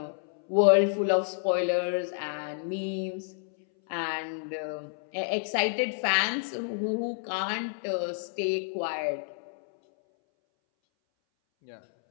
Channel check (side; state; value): right; silent; 58 dB below the other